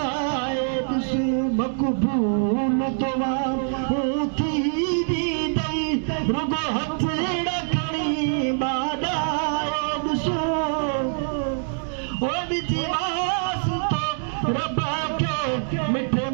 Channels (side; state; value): left; silent; digital silence